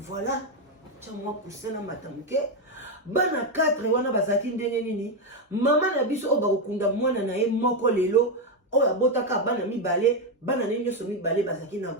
tiens moi pousser na matamuke bana 4 wana bazaki ndenge nini mama na biso o bakunda mwana na ye moko lelo o abotaka bana mibale bana ne nyoso mibale bazaki na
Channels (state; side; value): normal; both; correlation 0.06